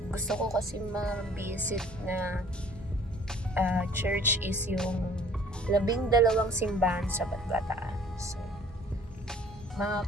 Gusto ko kasi ma-visit na church is yung 12 simbahan sa Bataan. So,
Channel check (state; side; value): normal; both; correlation 0.54